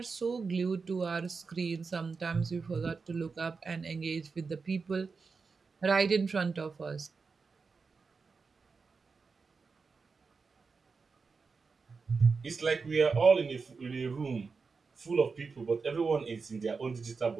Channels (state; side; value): quieter; left; 4.8 dB